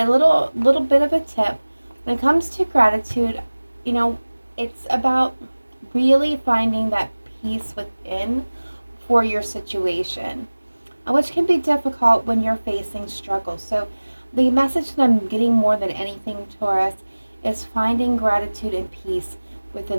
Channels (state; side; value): inverted; both; correlation -1.00